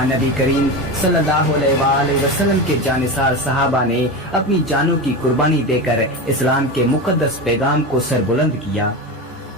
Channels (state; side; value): normal; both; correlation 0.22